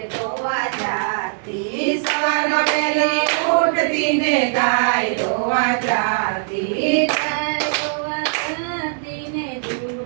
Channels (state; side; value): silent; left; 65 dB below the other